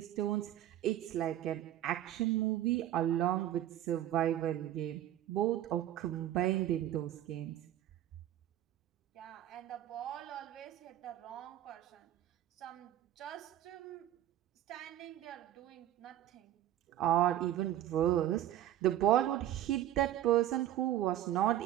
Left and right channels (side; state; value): left; quieter; 12.6 dB